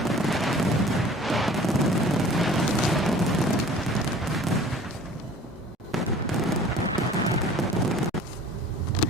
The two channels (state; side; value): normal; both; correlation 0.47